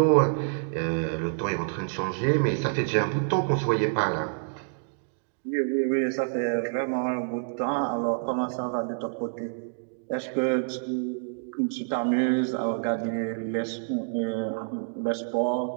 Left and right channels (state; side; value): silent; left; digital silence